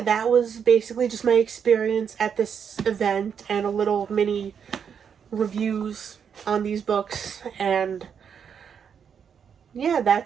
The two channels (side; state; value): left; quieter; 7.3 dB